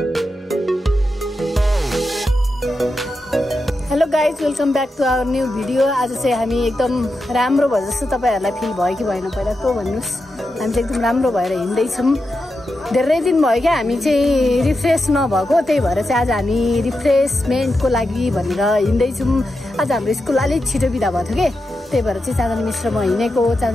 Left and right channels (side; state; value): both; normal; correlation 0.88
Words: hello guys welcome back to our new video आज चाहिँ हामी एकदम राम्रो भयो जस्तो तपाईँहरूलाई फिल भयो कि भएन पहिला त्यो भन्नुहोस् हामी चाहिँ एकदम राम्रो भएर हिँड्दैछौँ धेरै दिन भयो क्या हामी चाहिँ रिफ्रेस नभएको त्यही भएर चाहिँ आज हामी रिफ्रेसमेन्टको लागि भनेर हिँड्दैछौँ आज हाम्रो स्कुल अलिक छिटो बिदा भएको थियो कि त्यही भएर चाहिँ चाँदनी मिस र म हिँडेको